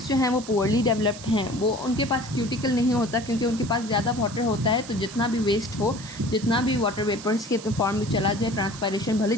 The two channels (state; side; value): noise; right; hiss, 15 dB below the sound